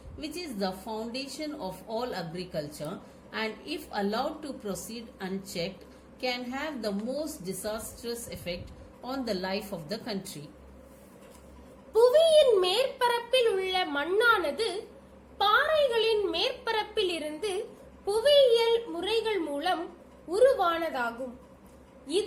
which is the foundation of all agriculture, and if allowed to proceed unchecked, can have the most disastrous effect on the life of the country. புவியின் மேற்பரப்பில் உள்ள மண்ணானது பாறைகளின் மேற்பரப்பில் இருந்து புவியியல் முறைகள் மூலம் உருவானதாகும்.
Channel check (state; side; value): identical; both; correlation 1.00